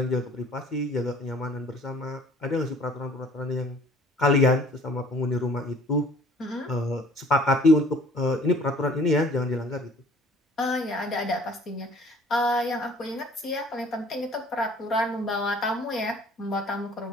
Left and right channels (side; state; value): both; normal; correlation 0.53